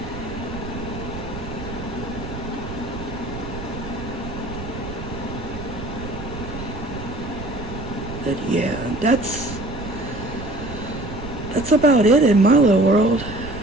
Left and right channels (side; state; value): right; noise; rumble, 10 dB below the sound